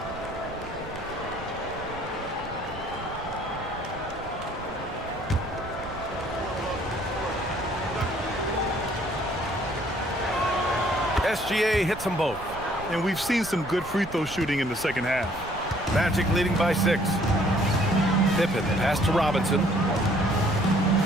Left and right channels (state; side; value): noise; right; rumble, 15 dB below the sound